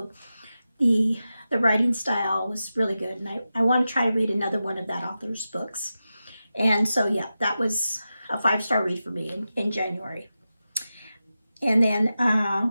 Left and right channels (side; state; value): both; inverted; correlation -0.92